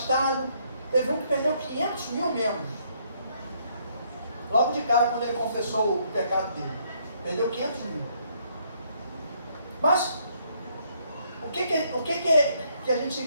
Teve um que perdeu 500 mil membros. Logo de cara, quando ele confessou o pecado dele. Perdeu 500 mil. Mas, o que a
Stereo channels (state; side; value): inverted; both; correlation -0.69